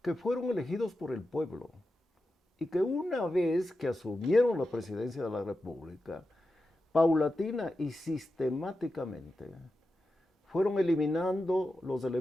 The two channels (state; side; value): normal; both; correlation 0.91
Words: que fueron elegidos por el pueblo y que una vez que asumieron la presidencia de la República, paulatina y sistemáticamente, fueron eliminando los